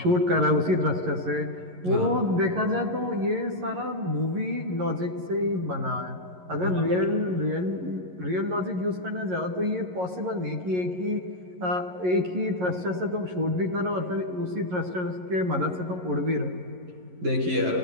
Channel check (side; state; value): left; late; 11 ms